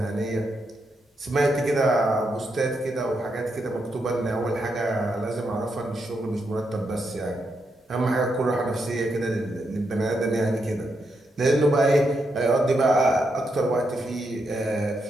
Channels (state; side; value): normal; both; correlation 0.82